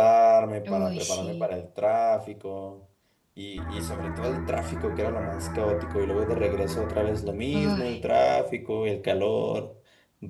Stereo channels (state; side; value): identical; both; correlation 1.00